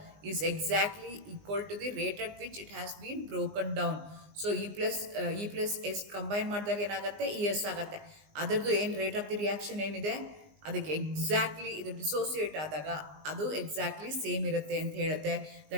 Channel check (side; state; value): left; late; 19 ms